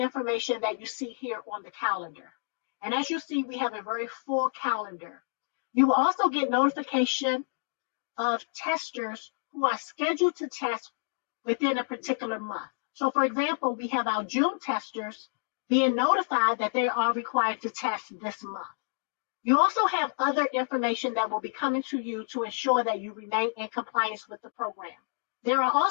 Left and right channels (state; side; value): silent; right; digital silence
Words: that you see here on the calendar. And as you see, we have a very full calendar. You will also get notification of testers who are scheduled to test within a particular month. So for example, we have our June testers being notified that they are required to test this month. You also have other information that will be coming to you to ensure that you remain in compliance with the program. There are